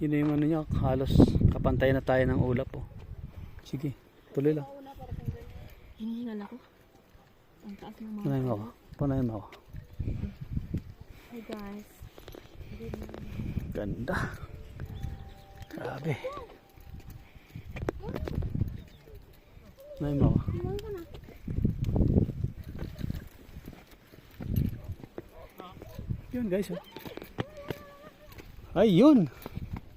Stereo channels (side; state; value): both; identical; correlation 1.00